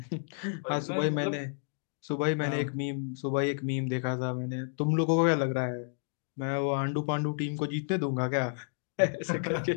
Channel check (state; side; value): silent; right; digital silence